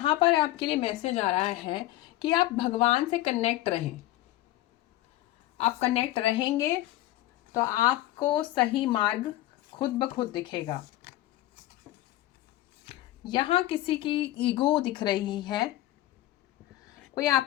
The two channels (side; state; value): right; quieter; 15.6 dB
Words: पर आपके लिए मैसेज आ रहा है कि आप भगवान से कनेक्ट रहें। आप कनेक्ट रहेंगे तो आपको सही मार्ग खुद ब खुद दिखेगा। यहाँ किसी की ईगो दिख रही है, कोई